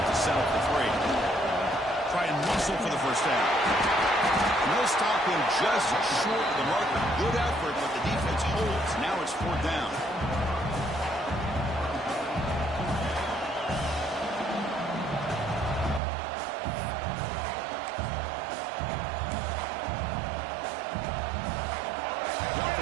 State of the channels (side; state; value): left; drops out; at 16.0 s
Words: to settle for 3? Try and muscle for the first down. No stop him just short of the marker. Good effort, but the defense holds. Now it's 4th down. The